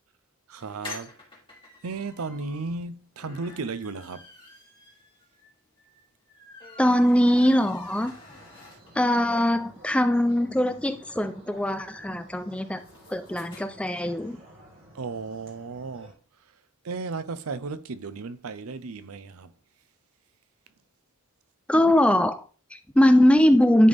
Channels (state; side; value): normal; both; correlation 0.90